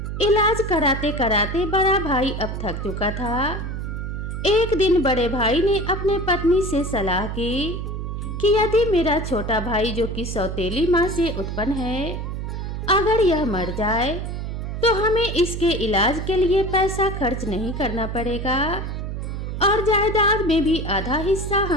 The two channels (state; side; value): noise; right; hum, 5 dB below the sound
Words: इलाज कराते कराते बड़ा भाई अब थक चुका था। एक दिन बड़े भाई ने अपने पत्नी से सलाह की कि यदि मेरा छोटा भाई, जो कि सौतेली माँ से उत्पन्न है, अगर यह मर जाए तो हमें इसके इलाज के लिए पैसा खर्च नहीं करना पड़ेगा और जायदाद में भी आधा हिस्सा